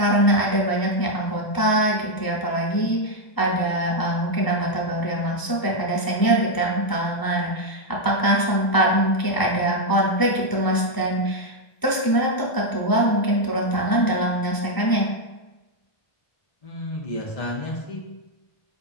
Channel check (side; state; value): right; late; 1.0 ms